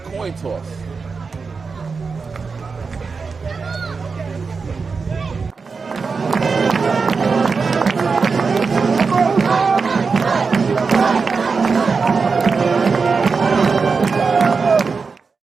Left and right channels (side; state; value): left; quieter; 4.9 dB